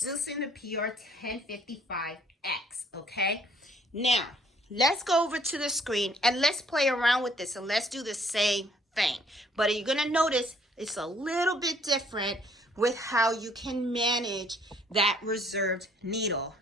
the PR1055X, okay? Now, let's go over to the screen and let's play around with this and let's do the same thing. But you're going to notice it's a little bit different with how you can manage that reserved needle,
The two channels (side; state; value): both; normal; correlation 0.62